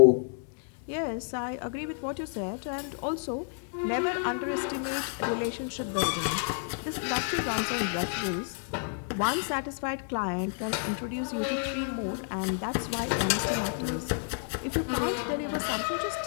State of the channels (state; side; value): silent; right; 58 dB below the other